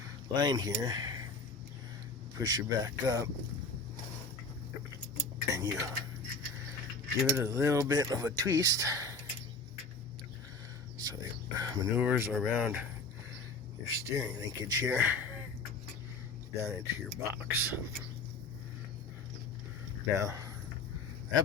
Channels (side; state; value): right; quieter; 3.7 dB